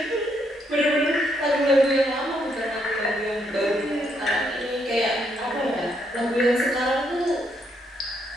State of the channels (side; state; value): both; normal; correlation 0.75